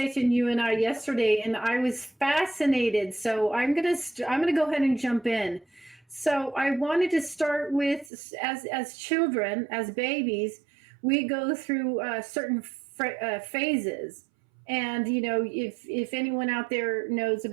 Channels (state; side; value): drops out; left; at 8.1 s